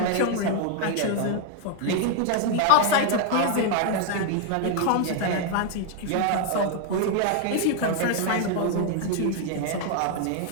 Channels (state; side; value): different; both; correlation 0.00